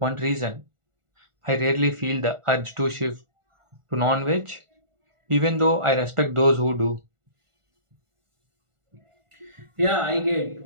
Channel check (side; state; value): left; late; 1.4 ms